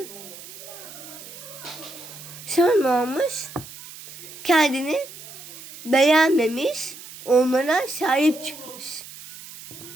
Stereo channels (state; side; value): noise; right; hiss, 15 dB below the sound